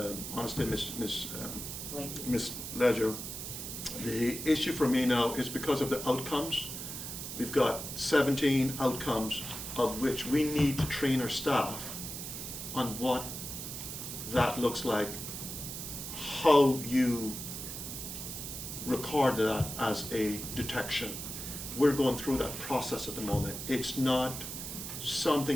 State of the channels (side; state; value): right; noise; hiss, 7 dB below the sound